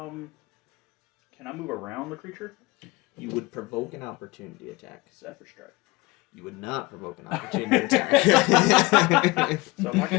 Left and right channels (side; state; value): right; quieter; 22.3 dB